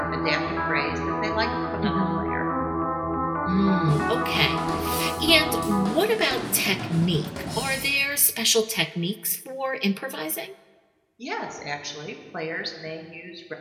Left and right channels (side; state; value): both; identical; correlation 1.00